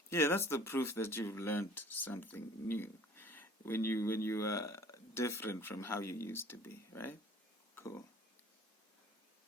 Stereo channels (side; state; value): both; normal; correlation 0.50